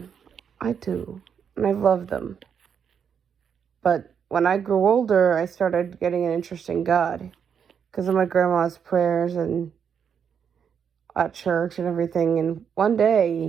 I do. And I love them. But when I grew older, I started getting an interest in God. Because of my grandma's prayers and at church and everything. And one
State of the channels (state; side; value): quieter; left; 7.5 dB